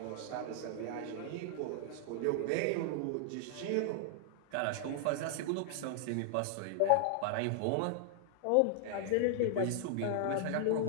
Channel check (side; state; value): both; different; correlation -0.01